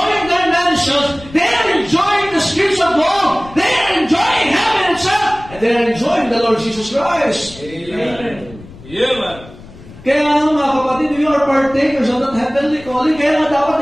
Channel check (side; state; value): left; noise; rumble, 19 dB below the sound